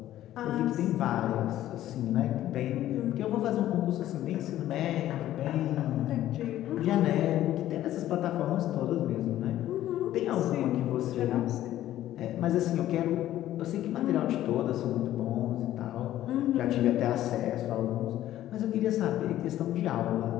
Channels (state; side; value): quieter; right; 13.3 dB